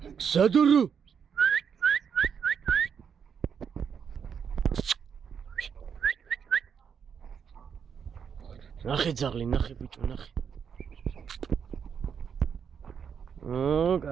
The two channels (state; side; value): quieter; left; 7.1 dB